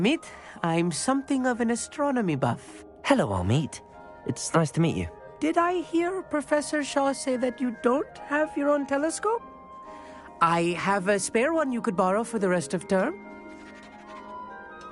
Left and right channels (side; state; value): both; identical; correlation 1.00